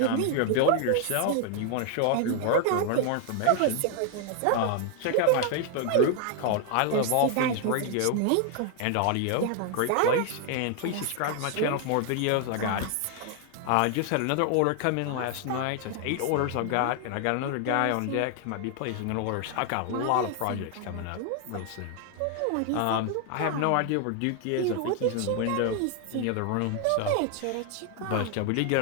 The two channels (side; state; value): both; different; correlation 0.00